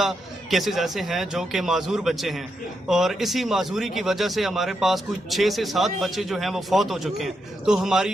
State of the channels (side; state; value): both; normal; correlation 0.83